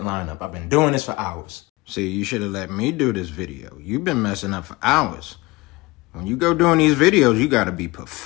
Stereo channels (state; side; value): quieter; right; 22.3 dB